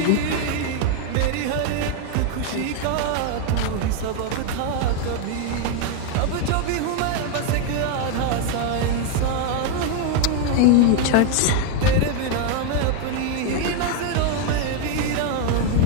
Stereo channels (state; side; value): different; both; correlation 0.01